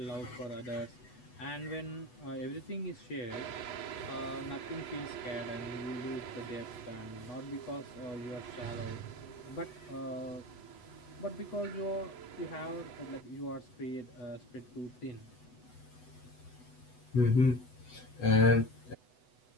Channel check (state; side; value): late; right; 8.0 ms